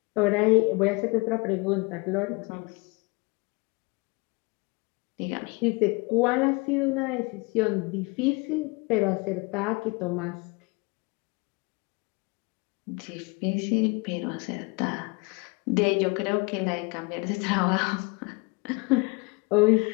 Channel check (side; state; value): right; quieter; 28.2 dB